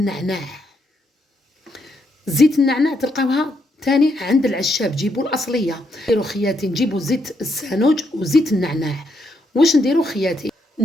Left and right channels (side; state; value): both; normal; correlation 0.77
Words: زيت النعناع تلقاوها تاني عند العشاب، جيبوا الاصليه. نديروا خياتي نجيبوا زيت السانوج وزيت النعناع. واش نديروا خياتي؟